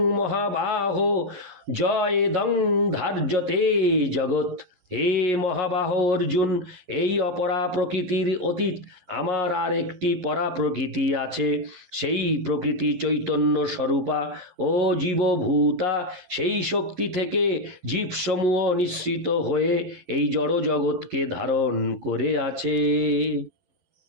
মহাবাহো জয়েদং ধার্যতে জগৎ। হে মহাবাহ অর্জুন, এই অপরা প্রকৃতির অতীত আমার আর একটি পরা প্রকৃতি আছে। সেই প্রকৃতি চৈতন্য স্বরূপা ও জীবভূতা। সেই শক্তি থেকে জীবসমূহ নিঃসৃত হয়ে এই জড় জগৎকে ধারণ করে আছে।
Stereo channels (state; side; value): late; left; 11 ms